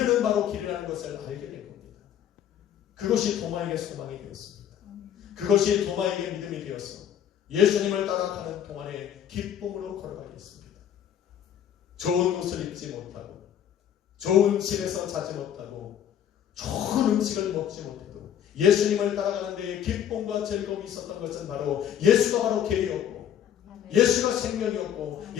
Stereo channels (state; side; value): quieter; right; 9.7 dB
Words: 바로 길이라는 것을 알게 된 겁니다. 그것이 도마에게 소망이 되었습니다. 그것이 도마에게 믿음이 되어서 예수님을 따라가는 동안에 기쁨으로 걸어가게 했습니다. 좋은 옷을 입지 못하고 좋은 집에서 자지 못하고 좋은 음식을 먹지 못해도 예수님을 따라가는 데에 기쁨과 즐거움이 있었던 것은 바로 예수가 바로 길이었고 예수가 생명이었고